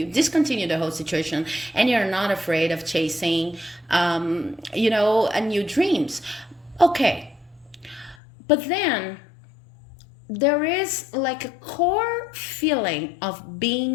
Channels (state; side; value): drops out; right; at 8.2 s